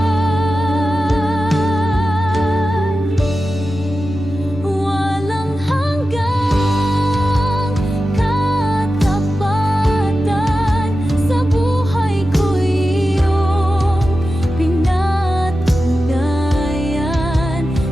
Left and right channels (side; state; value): both; normal; correlation 0.93